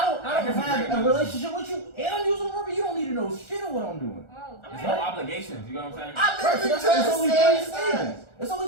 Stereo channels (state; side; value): late; right; 1.4 ms